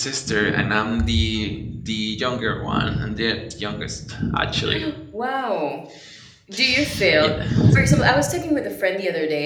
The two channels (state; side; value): identical; both; correlation 1.00